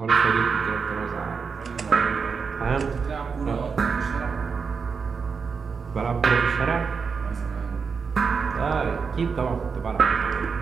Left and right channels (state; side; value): quieter; left; 5.6 dB